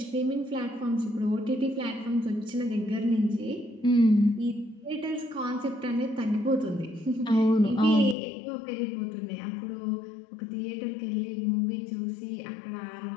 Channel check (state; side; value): drops out; right; at 8.2 s